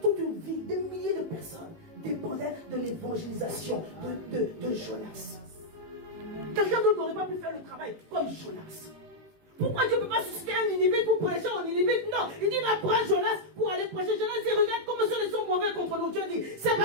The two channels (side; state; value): left; late; 18 ms